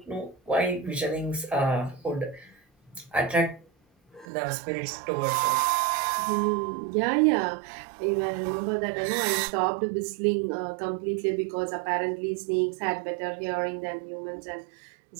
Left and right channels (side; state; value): left; drops out; at 4.2 s